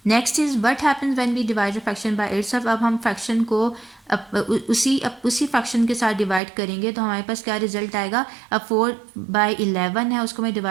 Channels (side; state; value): left; drops out; at 6.4 s